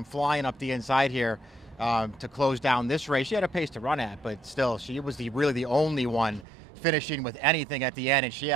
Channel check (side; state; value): left; drops out; at 6.5 s